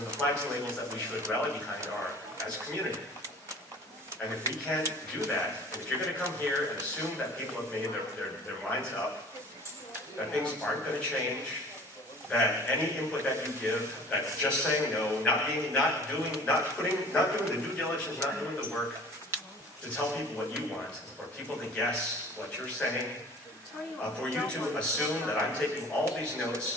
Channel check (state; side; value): normal; both; correlation 0.46